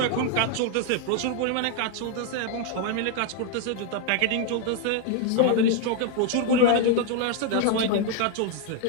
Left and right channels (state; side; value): different; both; correlation 0.00